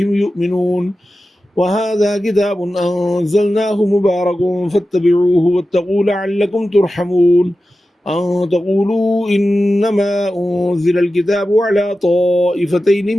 يؤمنون وهذا كتاب أنزلناه مبارك فاتبعوه واتقوا لعلكم ترحمون أن تقولوا إنما أنزل الكتاب على طائفتين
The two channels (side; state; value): both; normal; correlation 0.93